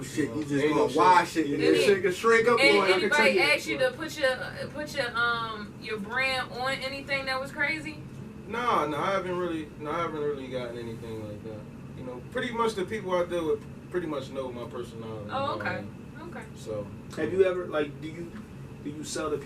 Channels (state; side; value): identical; both; correlation 1.00